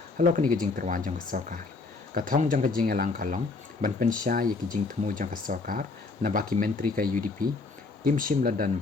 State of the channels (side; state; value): right; quieter; 3.9 dB